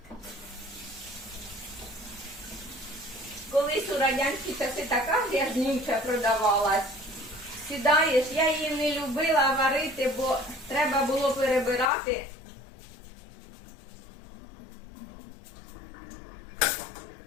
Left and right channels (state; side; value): drops out; right; at 11.9 s